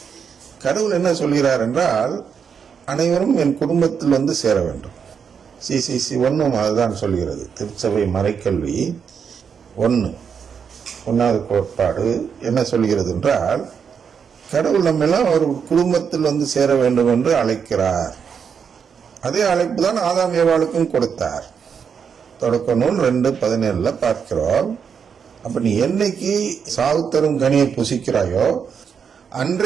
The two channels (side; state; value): left; quieter; 6.8 dB